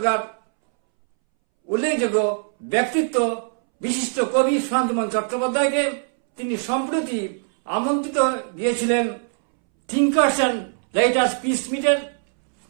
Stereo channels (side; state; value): left; silent; 64 dB below the other